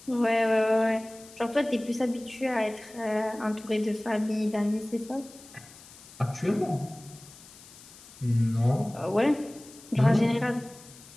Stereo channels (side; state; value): left; noise; hiss, 20 dB below the sound